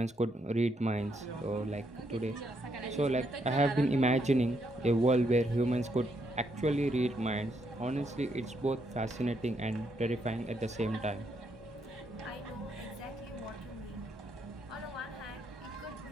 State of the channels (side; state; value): both; normal; correlation 0.76